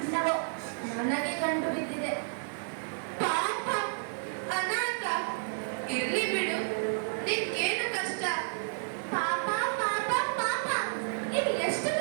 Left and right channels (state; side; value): silent; left; digital silence